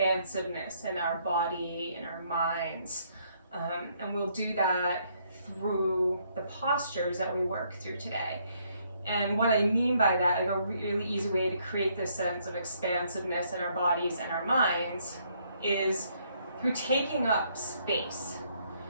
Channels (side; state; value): both; inverted; correlation -0.70